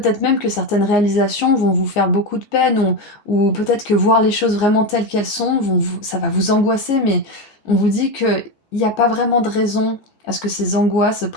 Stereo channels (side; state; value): right; late; 14 ms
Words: même que certaines réalisations vont vous faire beaucoup de peine, ou peut-être que voir les choses vraiment telles qu'elles sont, ça va vous angoisser, mais on vous dit qu'il n'y a pas vraiment de raison à ce que ces angoisses